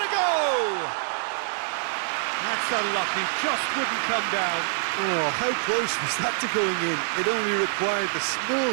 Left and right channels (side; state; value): left; silent; digital silence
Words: a go! That's unlucky, just wouldn't come down. Oh, how close was that to going in? It only required the